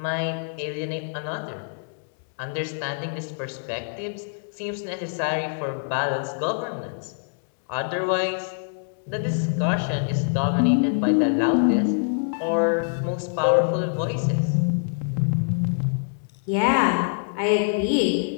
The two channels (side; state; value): right; silent; digital silence